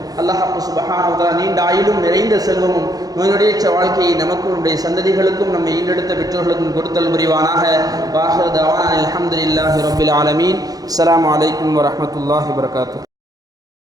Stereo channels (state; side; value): late; left; 0.18 ms